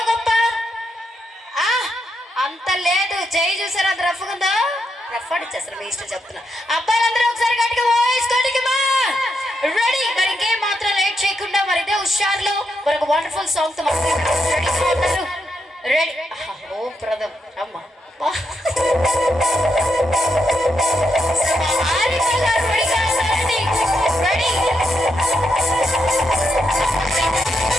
గొప్ప? అంత లేదు. జై చూసారు అంత రఫ్ ఉందో? రఫ్ అడిచేస్తారు మీ ఇష్టం చెప్తున్నా. అబ్బాయిలందరూ ఒకసారి గట్టిగా వేసుకోండి. రెడీ? మరి ఇంకేం మాత్రం లేట్ చేయకుండా మరి ఇదే హుషార్లో మరొక వండర్ఫుల్ సాంగ్ తో రెడీ ఉన్నారు. రెడీ? ఓ ప్రథమ్ అమ్మా రెడీ?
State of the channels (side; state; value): both; normal; correlation 0.81